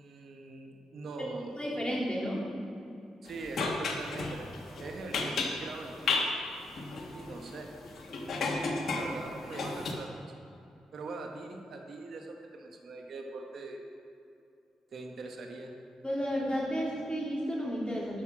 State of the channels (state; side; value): normal; both; correlation 0.79